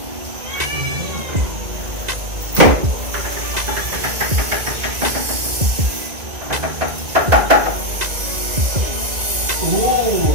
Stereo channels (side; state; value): left; late; 2.0 ms